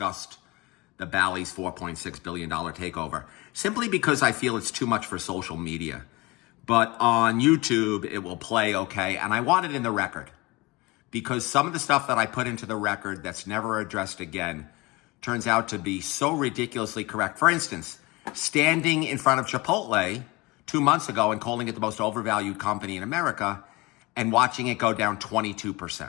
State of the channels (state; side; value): quieter; right; 23.4 dB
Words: the Ballys $4.6 billion takeover, simply because I feel it's too much for social media. But on YouTube, it will play okay, and I want it in the record, because some of the stuff that I put into the record that's never addressed again turns out to be so ridiculously correct. For instance, standing in front of Chipotle 2 months ago and calling it the most overvalued company in America, and watching it go down